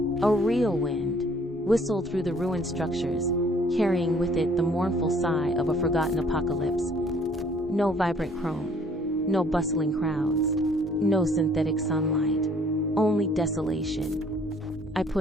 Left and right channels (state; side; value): normal; both; correlation 0.59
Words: a real wind, whistled through the ruined structures, carrying with it the mournful sigh of a forgotten apocalypse. No vibrant chrome, no bustling crowds, no synthetic sunlight, only desolation. I